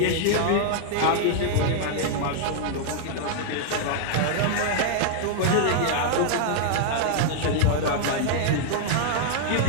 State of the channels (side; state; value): both; different; correlation -0.01